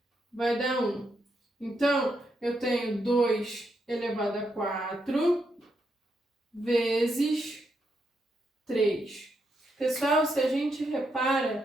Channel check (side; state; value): both; normal; correlation 0.81